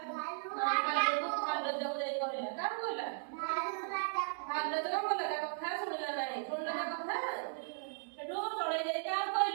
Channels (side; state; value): left; silent; digital silence